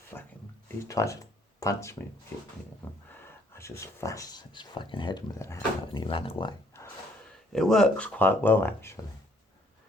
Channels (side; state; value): both; normal; correlation 0.64